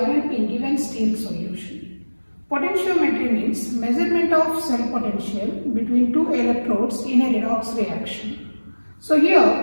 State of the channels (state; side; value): inverted; both; correlation -1.00